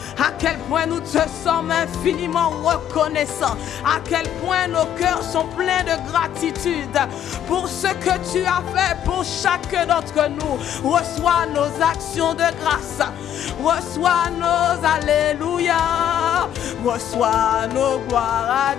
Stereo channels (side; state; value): right; quieter; 10.2 dB